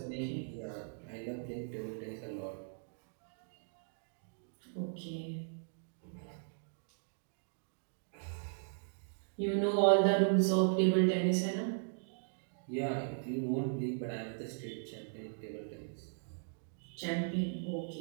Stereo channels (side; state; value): left; silent; digital silence